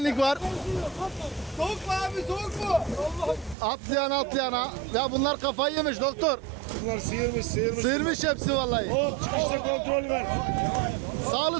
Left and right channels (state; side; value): drops out; left; at 3.6 s